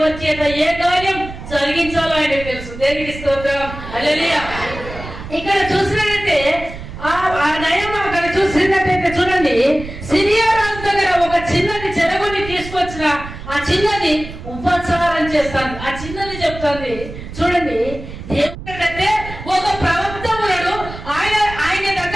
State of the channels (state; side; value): noise; right; rumble, 12 dB below the sound